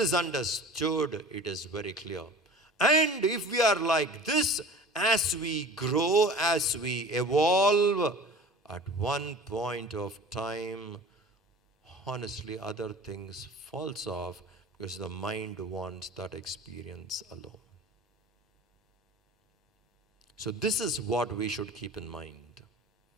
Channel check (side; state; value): both; normal; correlation 0.40